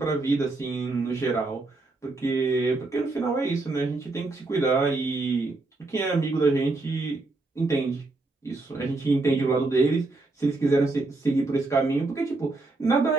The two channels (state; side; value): quieter; left; 3.3 dB